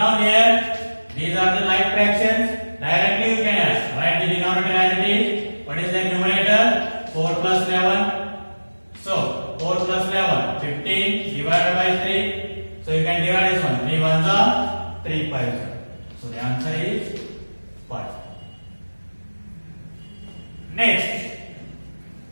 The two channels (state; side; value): inverted; both; correlation -1.00